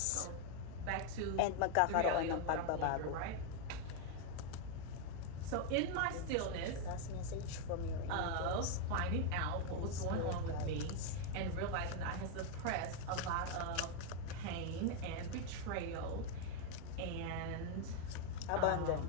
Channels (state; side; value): different; both; correlation 0.01